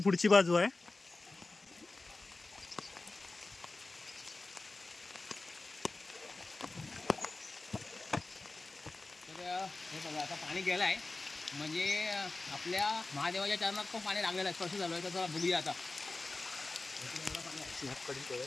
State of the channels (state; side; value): quieter; right; 3.3 dB